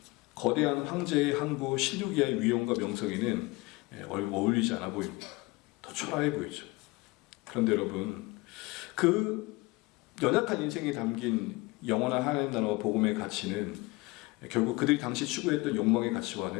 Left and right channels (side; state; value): right; quieter; 23.2 dB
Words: 거대한 황제의 항구 실루기아의 위엄과 명성에는 어울리지 않아 보입니다. 더 초라해 보이죠. 그런데 여러분, 그 연약한 인생에 담긴 영원한 하나님 나라와 복음의 가치는 결국 그들이 당시 추구했던 욕망의